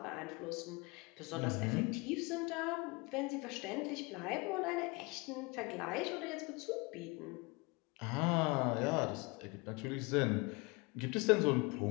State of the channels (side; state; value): right; quieter; 27.2 dB